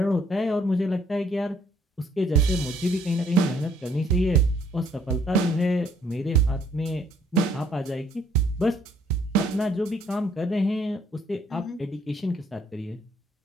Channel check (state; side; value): normal; both; correlation 0.64